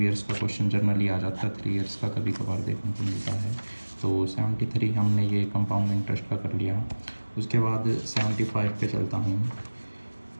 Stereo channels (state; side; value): inverted; both; correlation -1.00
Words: ईयर्स का क्वेश्चन जनरली आ जाता है, 3 ईयर्स का कभी कभार देखने को मिलता है। तो 73 हमने ये कंपाउंड इंटरेस्ट का कर लिया। उसके बाद 75 पे चलता हूँ।